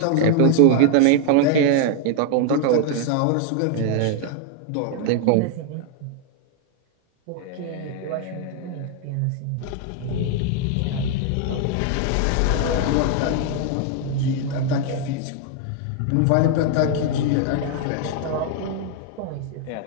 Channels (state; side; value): different; both; correlation 0.00